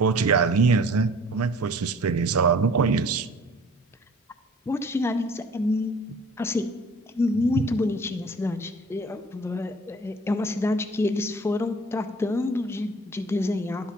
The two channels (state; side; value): normal; both; correlation 0.49